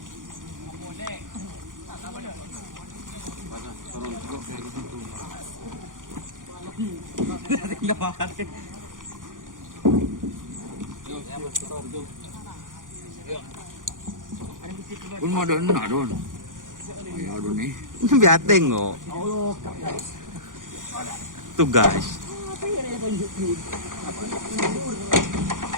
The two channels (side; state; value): left; late; 0.89 ms